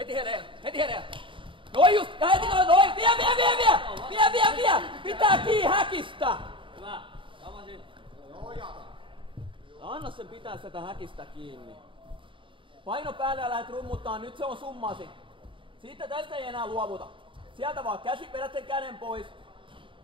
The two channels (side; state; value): left; late; 0.25 ms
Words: Heti hereillä. Noin just, ja heti noin. Vie. Pitää kiinni häkistä. Hyvä. Tamasin. Anna sen pitää sitä häkistä kiinni. Paino päälle ja lähdet rummuttaa, nyt se on summasi. Siitä tästä ei enää luovuta. Sieltä vaan käsi, vedät sen käden pois.